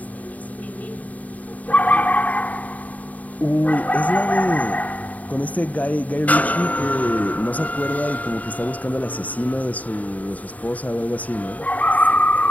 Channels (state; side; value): late; right; 0.073 ms